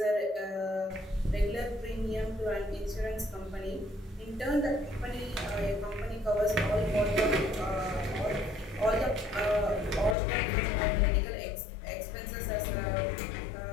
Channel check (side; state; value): right; drops out; at 10.2 s